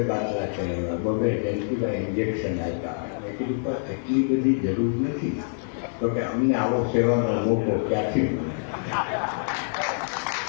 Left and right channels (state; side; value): silent; right; digital silence